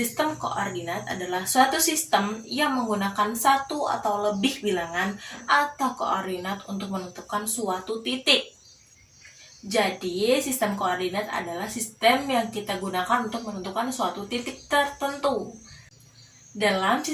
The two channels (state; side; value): identical; both; correlation 1.00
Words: koordinat adalah suatu sistem yang menggunakan satu atau lebih bilangan atau koordinat untuk menentukan suatu titik. Jadi, sistem koordinat adalah sistem yang kita gunakan untuk menentukan suatu titik tertentu. Dalam